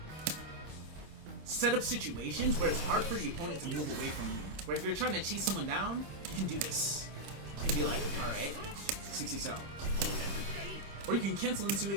set up situations where it's hard for the opponent to move away from you. Where if you're trying to chase someone down, you can do this. You can be like, alright, 60 cell. Or you can cancel into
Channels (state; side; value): late; left; 26 ms